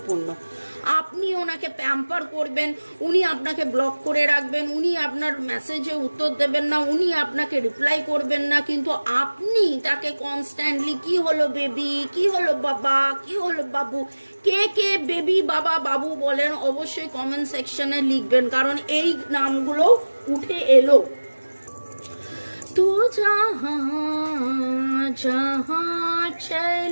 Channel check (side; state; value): both; inverted; correlation -1.00